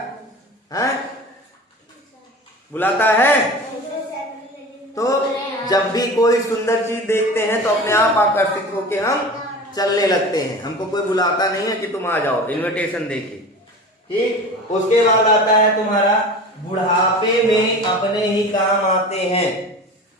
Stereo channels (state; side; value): normal; both; correlation 0.34